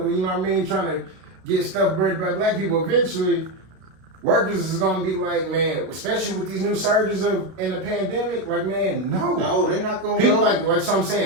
You know what I mean? Trying to get stuff worried about black people. Eventually, workers is gonna be like, man, especially with these new surges in the pandemic. Like, man, no, they're not gonna people go. like so I'm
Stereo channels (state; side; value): late; left; 32 ms